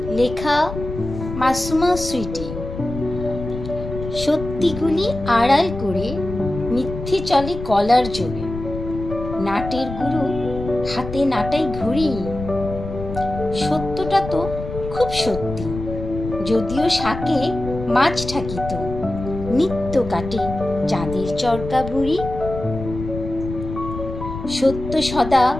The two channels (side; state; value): left; noise; rumble, 9 dB below the sound